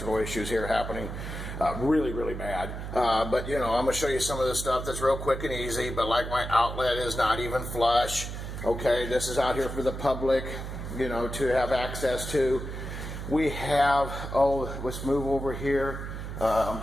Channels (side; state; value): right; noise; hum, 7 dB below the sound